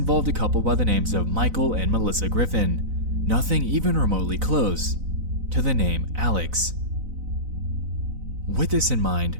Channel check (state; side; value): late; left; 4.0 ms